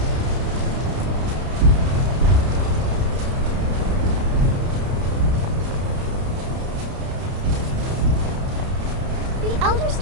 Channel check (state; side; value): late; left; 31 ms